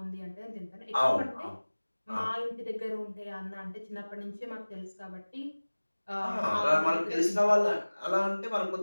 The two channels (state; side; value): inverted; both; correlation -1.00